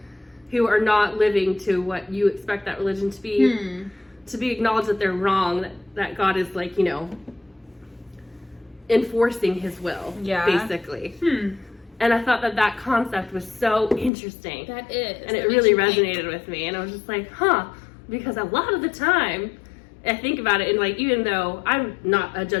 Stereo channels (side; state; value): right; drops out; at 14.1 s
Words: who are not living to what you expect that religion to be acknowledged that they're wrong, that God is like, you know, enforcing his will, basically. And I thought that concept was so interesting. That is. And it really resonated with me. And I was just like, because a lot of the time, I think about it, and like, even though I'm not a